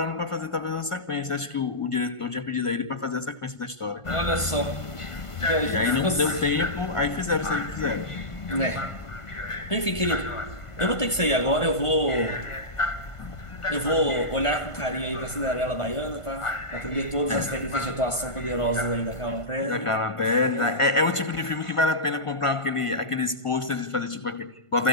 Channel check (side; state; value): right; late; 1.5 ms